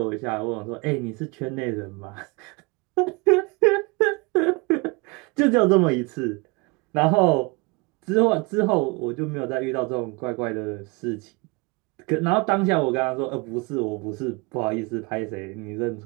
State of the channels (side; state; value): left; quieter; 28.3 dB